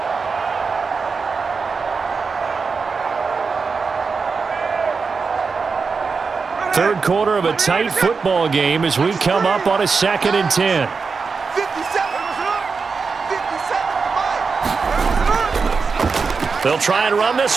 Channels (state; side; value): quieter; left; 4.9 dB